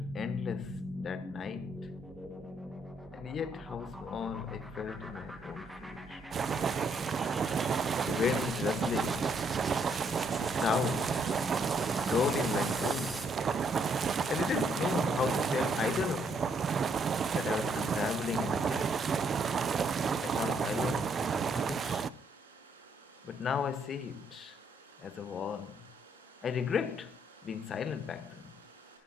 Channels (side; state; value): both; normal; correlation 0.71